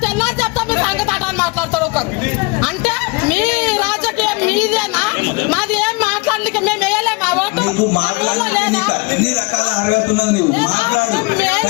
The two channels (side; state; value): right; quieter; 27.3 dB